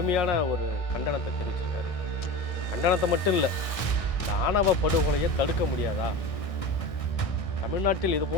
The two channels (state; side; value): late; right; 1.6 ms